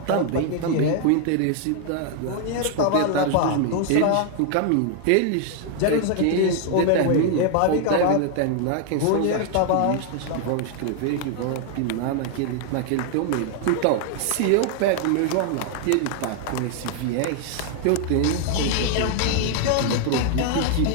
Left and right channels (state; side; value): different; both; correlation 0.00